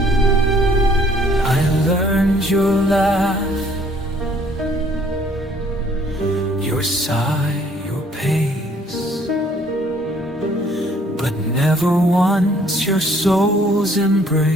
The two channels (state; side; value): normal; both; correlation 0.61